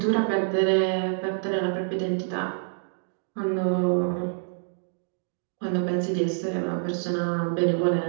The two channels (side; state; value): left; silent; digital silence